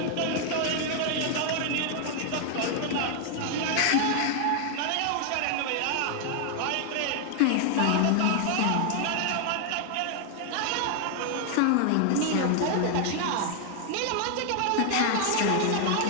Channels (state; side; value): different; both; correlation 0.00